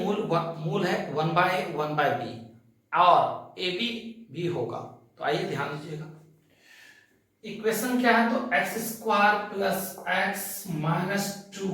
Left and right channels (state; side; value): identical; both; correlation 1.00